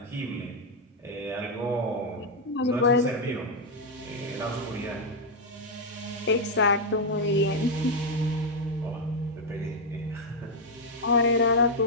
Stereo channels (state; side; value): normal; both; correlation 0.00